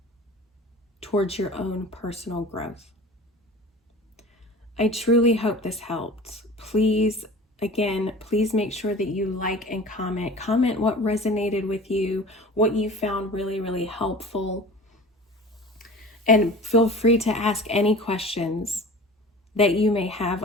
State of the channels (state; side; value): normal; both; correlation 0.40